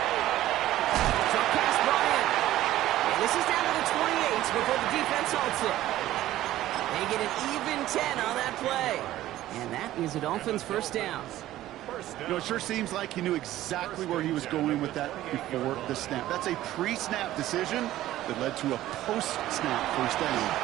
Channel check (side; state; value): left; quieter; 14.5 dB